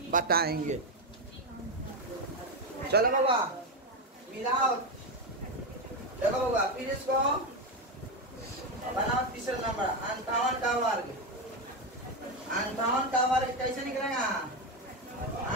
बताएंगे। चलो बाबा, मिलाओ। देखो बाबा, फिर इसको बनाओ। तीसरा नंबर 58 का वर्ग। 58 का वर्ग कैसे निकलेगा?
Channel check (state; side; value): normal; both; correlation 0.11